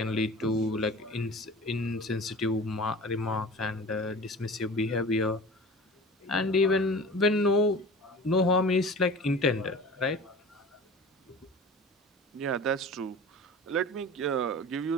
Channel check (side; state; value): both; normal; correlation 0.38